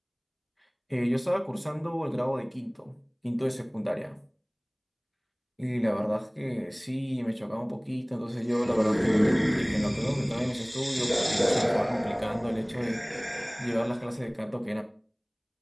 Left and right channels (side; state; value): both; identical; correlation 1.00